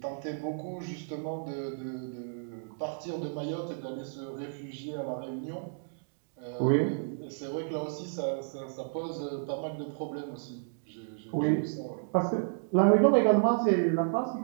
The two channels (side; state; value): left; silent; digital silence